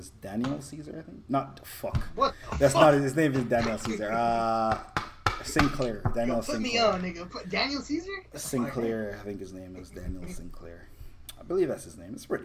Daniel Caesar. I think not fuck. What? That's not his name. Is Daniel Caesar. Sinclair. Daniel Sinclair. Put me on, nigga. Put Daniel Caesar. Sinclair. I think his name is Daniel Sinclair. I believe that's his name. It's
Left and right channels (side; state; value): both; identical; correlation 1.00